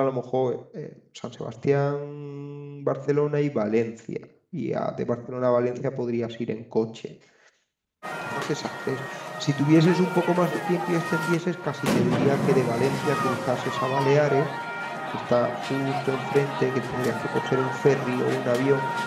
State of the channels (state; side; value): identical; both; correlation 1.00